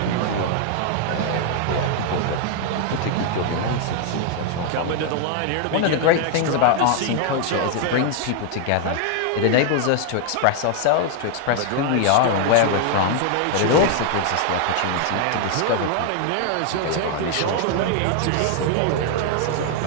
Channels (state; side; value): different; both; correlation 0.00